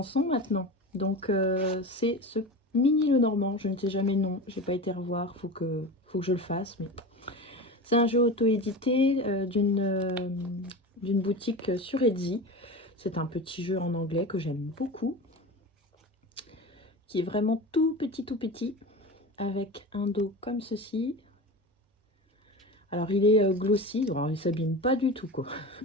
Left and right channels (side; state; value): both; normal; correlation 0.29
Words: maintenant. Donc c'est ce mini Lenormand, je ne sais jamais le nom, j'ai pas été revoir, faut que je le fasse. Mais c'est un jeu auto-édité d'une boutique sur Etsy. C'est un petit jeu en anglais que j'aime beaucoup, qui est vraiment tout petit, avec un dos comme ceci. Alors il est glossy, alors il s'abîme pas du tout quoi,